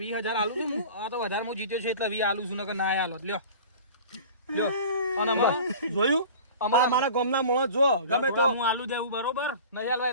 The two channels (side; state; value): both; inverted; correlation -0.39